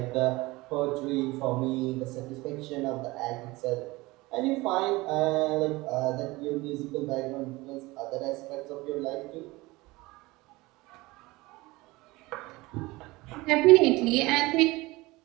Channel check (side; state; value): left; quieter; 21.4 dB